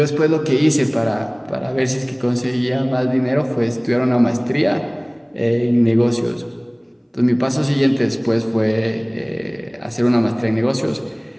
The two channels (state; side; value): identical; both; correlation 1.00